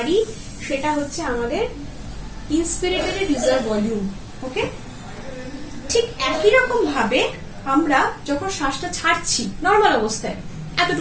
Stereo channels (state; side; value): identical; both; correlation 1.00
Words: সেটা হচ্ছে আমাদের ইন্সপিরেটরি রিজার্ভ ভলিউম। ওকে, ঠিক একই রকম ভাবে আমরা যখন শ্বাসটা ছাড়ছি নর্মাল অবস্থায়